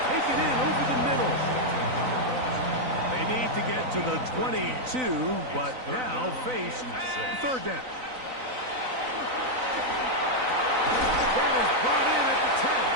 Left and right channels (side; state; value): left; late; 3.9 ms